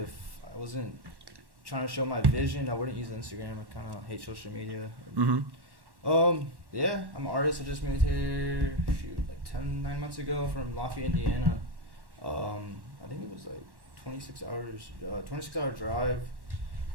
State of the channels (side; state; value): left; late; 1.1 ms